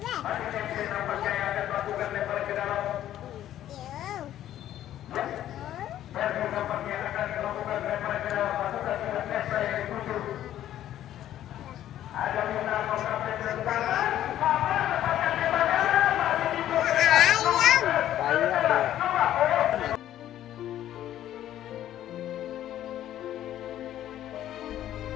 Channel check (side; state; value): right; quieter; 12.2 dB